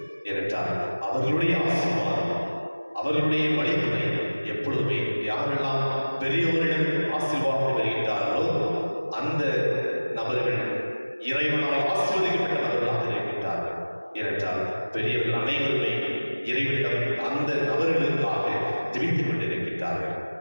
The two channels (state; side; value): inverted; both; correlation -1.00